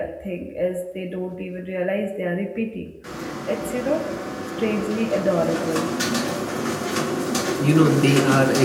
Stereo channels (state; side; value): identical; both; correlation 1.00